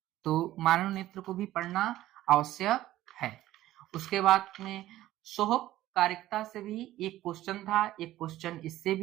तो मानव नेत्र को भी पढ़ना आवश्यक है। उसके बाद में सोहकारिकता से भी 1 क्वेश्चन था, 1 क्वेश्चन इससे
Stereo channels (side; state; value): left; quieter; 14.7 dB